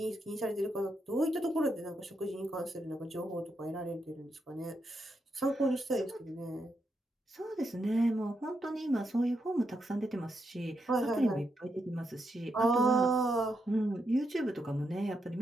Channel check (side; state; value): both; normal; correlation 0.82